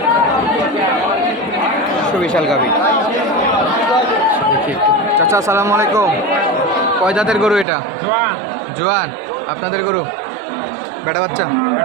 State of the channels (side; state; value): left; drops out; at 7.7 s